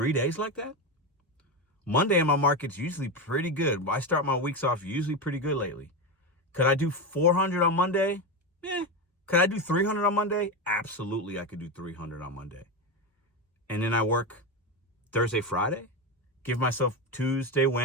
days like that? Monday in my market's usually pretty good. I start my weeks off usually pretty good lately. Could I do 400 on Monday? Could I do 300 on Monday? Absolutely, I could do 300 on Monday. And then I work Thursday, Friday, give myself Tuesday,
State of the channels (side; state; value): both; normal; correlation 0.15